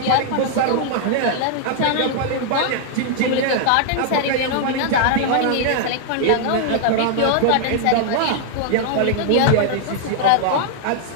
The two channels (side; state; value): both; different; correlation -0.01